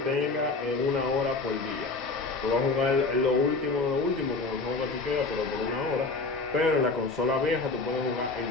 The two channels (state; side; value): quieter; right; 3.6 dB